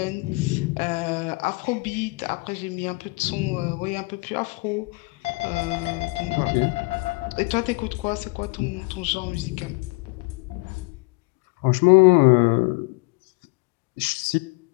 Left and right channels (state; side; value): quieter; right; 27.3 dB